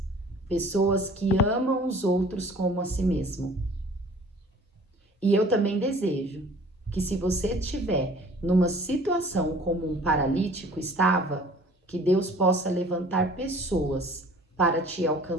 pessoas que amam os outros como a si mesmo. E eu também desejo que, se você estiver numa situação como um paralítico estava, que Deus possa levantar pessoas para te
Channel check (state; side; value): normal; both; correlation 0.50